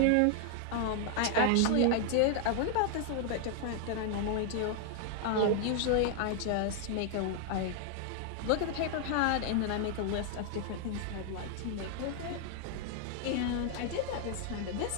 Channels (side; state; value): both; different; correlation 0.00